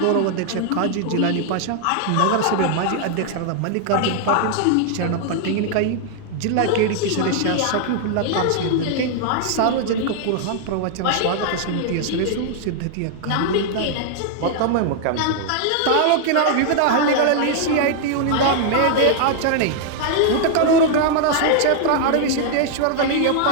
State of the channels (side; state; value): both; different; correlation 0.00